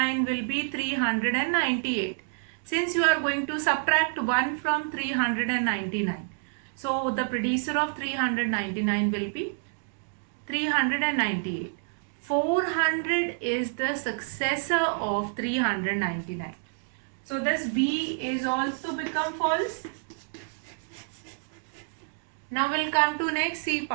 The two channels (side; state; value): left; silent; digital silence